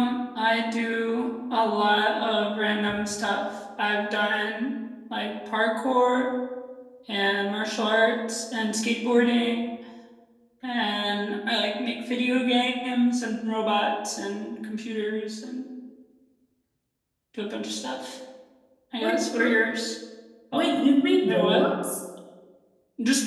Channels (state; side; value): identical; both; correlation 1.00